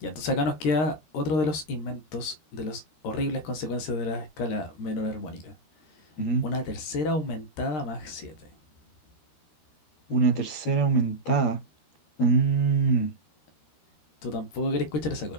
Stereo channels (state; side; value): late; right; 13 ms